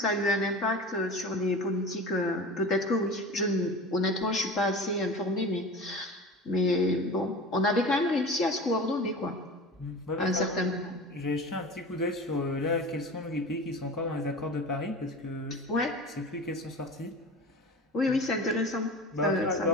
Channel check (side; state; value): both; normal; correlation 0.34